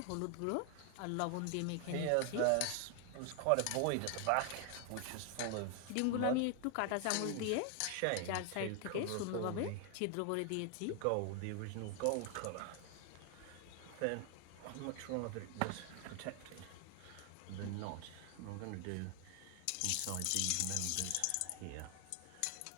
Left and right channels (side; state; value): both; different; correlation 0.00